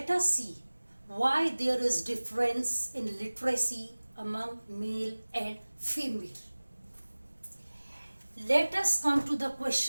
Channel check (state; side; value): inverted; both; correlation -1.00